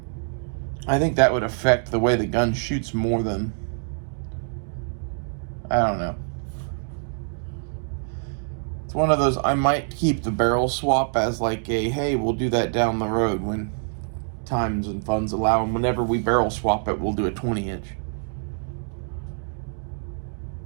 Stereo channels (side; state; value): left; silent; digital silence